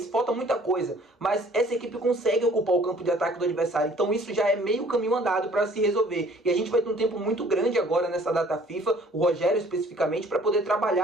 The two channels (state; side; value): normal; both; correlation 0.56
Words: falta muita coisa, mas essa equipe consegue ocupar o campo de ataque do adversário, então isso já é meio caminho andado para se resolver, e a gente vai ter um tempo muito grande agora nessa data FIFA, o Rogério especificamente, para poder